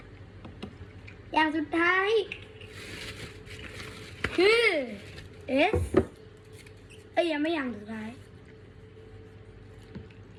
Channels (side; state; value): both; identical; correlation 1.00